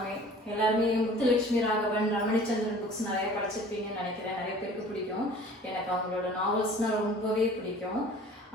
முத்துலட்சுமி ராகவன், ரமணிச்சந்திரன் புக்ஸ் நிறைய படிச்சிருப்பீங்கன்னு நினைக்கிறேன். நிறைய பேருக்கு பிடிக்கும். எனக்கு அவங்களோட நாவல்ஸ்னால் ரொம்பவே பிடிக்கும்.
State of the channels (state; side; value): normal; both; correlation 0.47